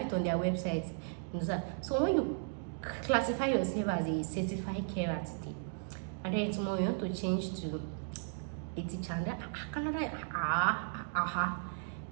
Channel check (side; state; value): left; silent; digital silence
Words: it on their website. You understand? So when you classify yourself as a certified carer today, and then tomorrow you want to change to a teacher, and Canada,